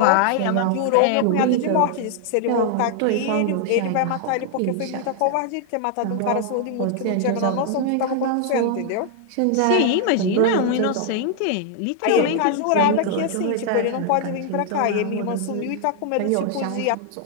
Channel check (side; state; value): both; different; correlation 0.00